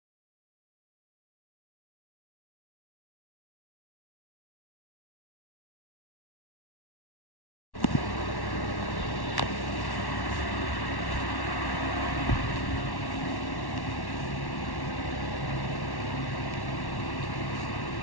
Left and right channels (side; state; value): right; late; 1.1 ms